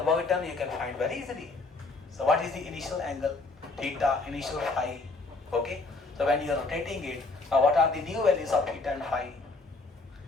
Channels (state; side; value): quieter; right; 3.5 dB